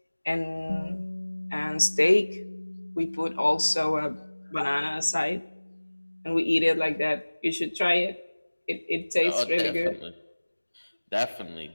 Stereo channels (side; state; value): both; inverted; correlation -1.00